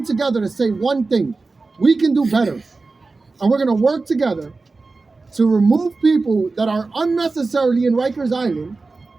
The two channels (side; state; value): left; quieter; 3.8 dB